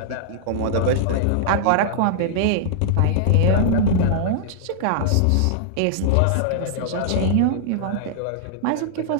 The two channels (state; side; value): different; both; correlation -0.01